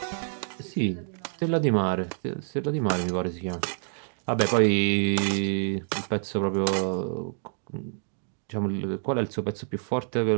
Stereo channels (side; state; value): left; silent; digital silence